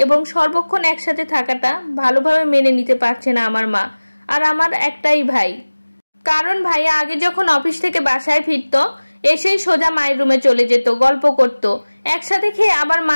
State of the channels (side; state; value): both; inverted; correlation -1.00